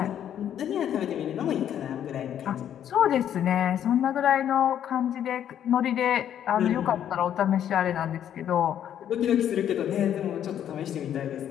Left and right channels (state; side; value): quieter; right; 10.0 dB